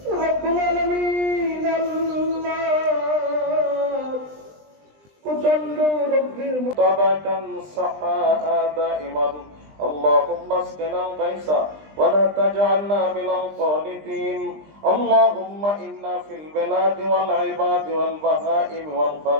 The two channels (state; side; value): late; left; 20 ms